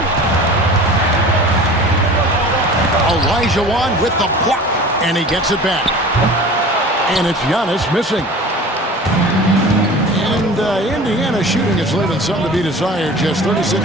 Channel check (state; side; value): normal; both; correlation 0.40